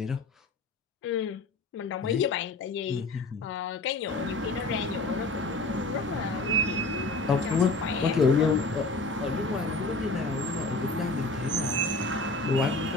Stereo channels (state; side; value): quieter; right; 3.1 dB